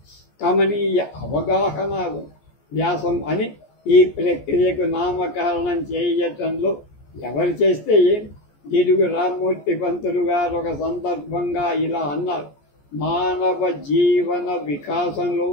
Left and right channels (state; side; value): late; right; 14 ms